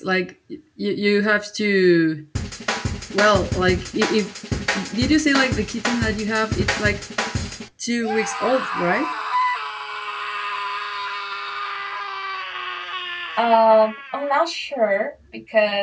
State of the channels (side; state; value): both; identical; correlation 1.00